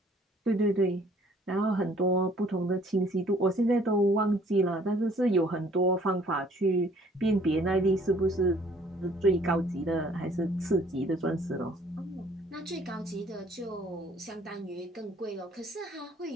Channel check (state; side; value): normal; both; correlation 0.58